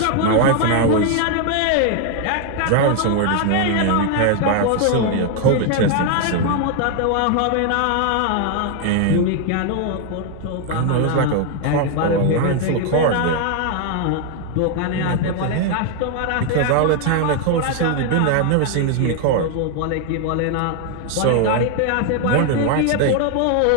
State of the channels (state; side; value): different; both; correlation 0.01